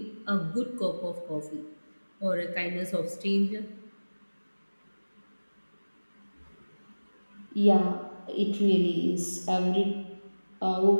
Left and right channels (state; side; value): inverted; both; correlation -1.00